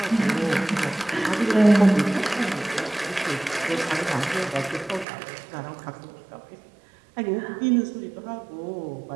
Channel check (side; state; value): left; drops out; at 5.1 s